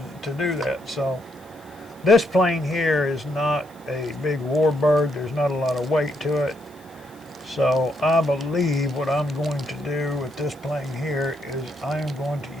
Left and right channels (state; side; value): noise; left; hiss, 29 dB below the sound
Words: to do that. So this plane here is not a big warbird. There's not a lot of weight to it. So I believe what I'm going to do with this plane here is I am going